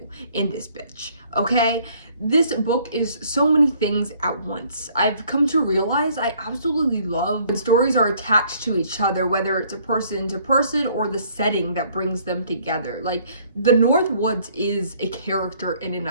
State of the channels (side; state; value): both; inverted; correlation -0.61